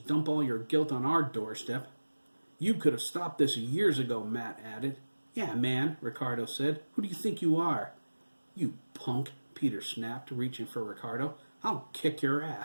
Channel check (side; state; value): both; inverted; correlation -1.00